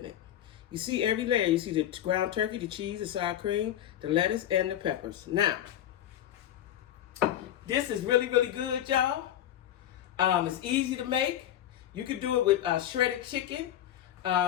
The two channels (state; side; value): quieter; right; 11.6 dB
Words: it. You see every layer. You see the ground turkey, the cheese, the sour cream, the lettuce, and the peppers. Now, this is really, really good, y'all. It's easy to make. You could do it with shredded chicken,